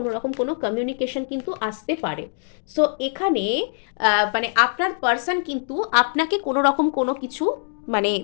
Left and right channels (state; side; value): silent; right; 63 dB below the other